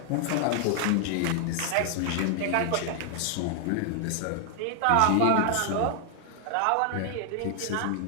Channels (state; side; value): different; both; correlation 0.00